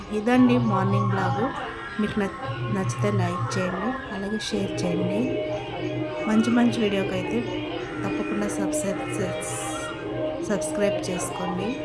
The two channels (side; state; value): both; identical; correlation 1.00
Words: ఇదండి మార్నింగ్ బ్లాగు. మీకు నచ్చితే లైక్ చేయండి, అలాగే షేర్ చేయండి. మంచి మంచి వీడియోకి అయితే తప్పకుండా సబ్స్క్రైబ్ చేసుకోండి.